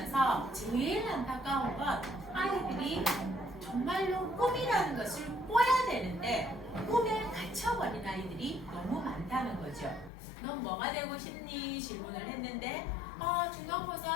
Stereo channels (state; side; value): drops out; right; at 10.1 s